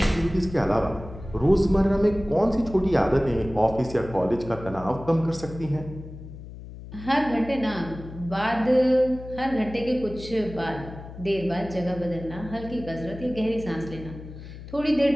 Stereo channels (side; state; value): left; noise; hum, 13 dB below the sound